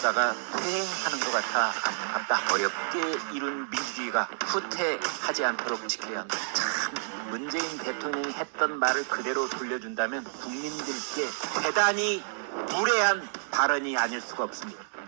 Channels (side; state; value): left; silent; digital silence